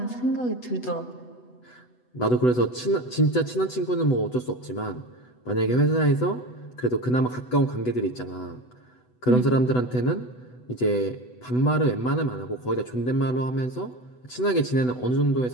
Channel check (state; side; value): late; right; 8.0 ms